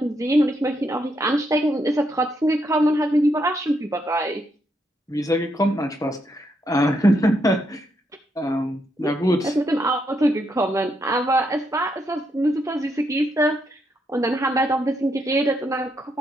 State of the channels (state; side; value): normal; both; correlation 0.78